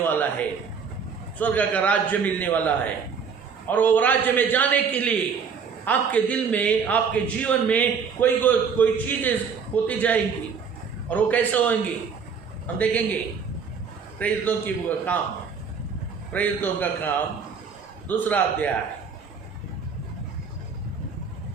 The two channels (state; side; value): quieter; left; 6.1 dB